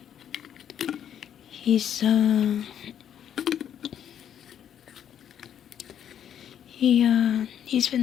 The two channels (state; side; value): quieter; right; 9.5 dB